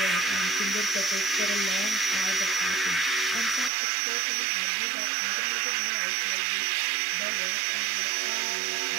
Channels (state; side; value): drops out; left; at 3.7 s